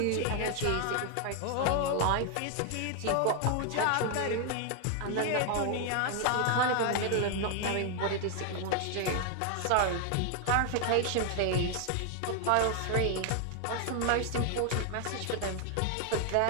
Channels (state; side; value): different; both; correlation 0.00